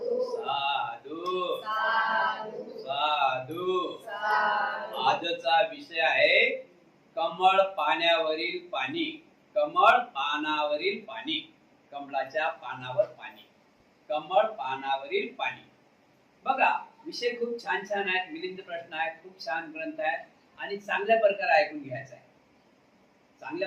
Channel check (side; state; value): both; identical; correlation 1.00